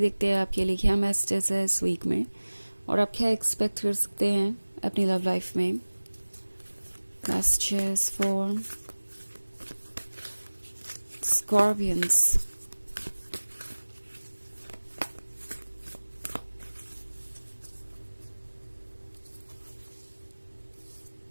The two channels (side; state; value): both; inverted; correlation -1.00